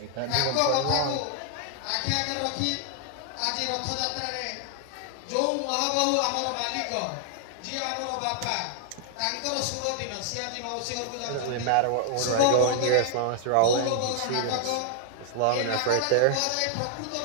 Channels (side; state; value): both; different; correlation 0.00